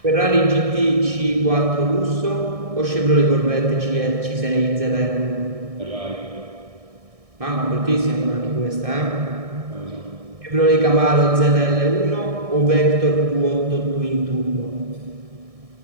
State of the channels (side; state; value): left; late; 1.6 ms